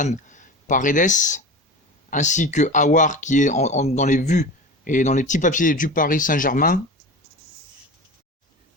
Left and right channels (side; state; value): both; normal; correlation 0.31